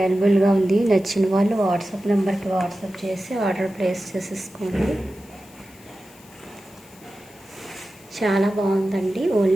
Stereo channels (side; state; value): left; noise; hiss, 25 dB below the sound